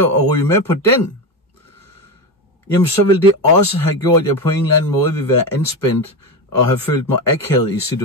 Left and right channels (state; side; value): normal; both; correlation 0.17